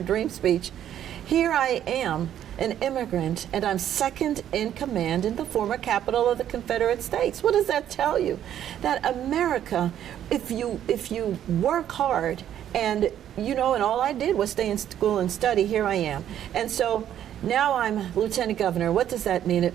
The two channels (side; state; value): left; quieter; 10.7 dB